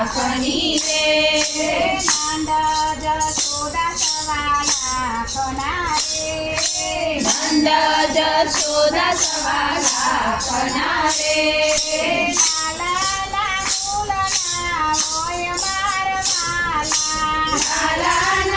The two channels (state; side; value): identical; both; correlation 1.00